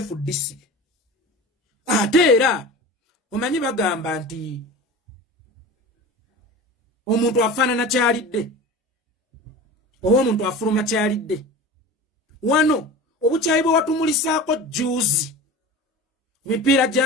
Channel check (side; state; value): both; normal; correlation 0.34